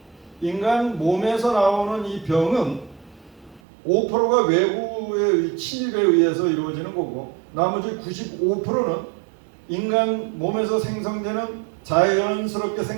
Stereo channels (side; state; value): left; drops out; at 3.6 s